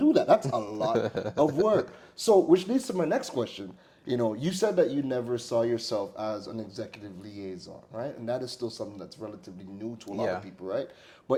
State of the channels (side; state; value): both; identical; correlation 1.00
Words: that. That's a lot of work. So, which leads to my next question. You know, you said that you never saw yourself as an executive liaison, right? And that is still something that's relatively new to a lot Yeah. of people, right?